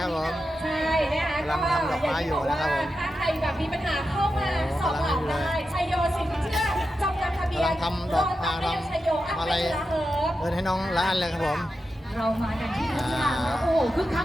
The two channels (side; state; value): both; normal; correlation 0.89